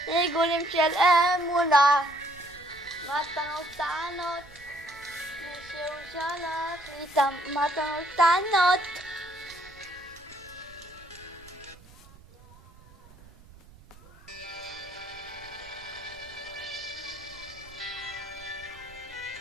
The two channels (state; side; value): noise; right; rumble, 22 dB below the sound